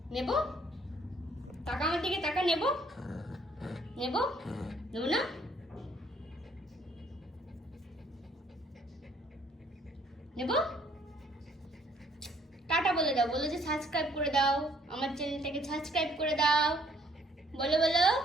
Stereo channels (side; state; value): both; normal; correlation 0.63